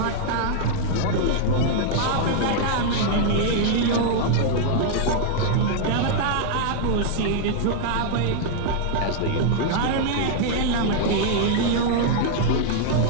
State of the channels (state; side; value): different; both; correlation -0.01